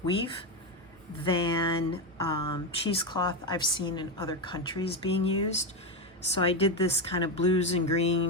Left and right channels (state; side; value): normal; both; correlation 0.12